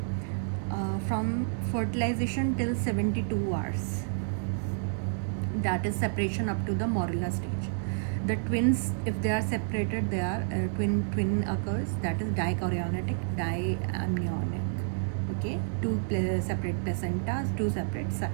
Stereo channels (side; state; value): left; silent; 58 dB below the other